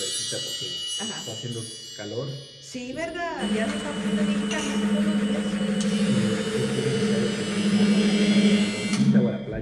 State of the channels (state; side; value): identical; both; correlation 1.00